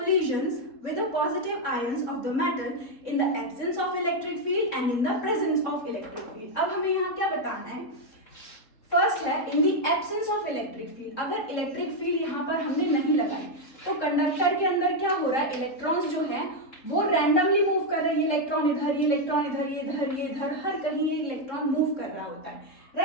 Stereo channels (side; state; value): right; late; 3.7 ms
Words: with the positive ions of the matter in the absence of electric field and in the presence of electric field। अब हमें यहाँ क्या बताना है, first है in the absence of electric field. अगर electric field यहाँ पर हमने नहीं लगाई तो कंडक्टर के अंदर क्या हो रहा है, इलेक्ट्रॉन्स जो है वो रैंडमली मूव कर रहे हैं, ये इलेक्ट्रॉन इधर, ये इलेक्ट्रॉन इधर, ये इधर, ये इधर, हर कहीं ये इलेक्ट्रॉन मूव कर रहा होता है,